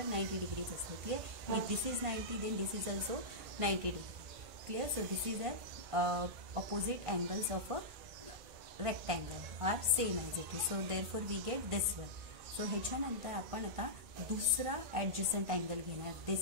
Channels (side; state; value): left; late; 1.5 ms